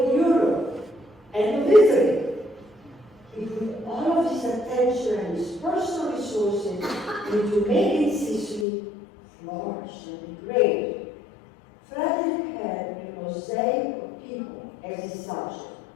Europe and of Italy, he put all of his attention and his personal resources into making Sicily flourish and be great. Frederick had a mosaic of people as his subject:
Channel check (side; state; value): right; drops out; at 8.7 s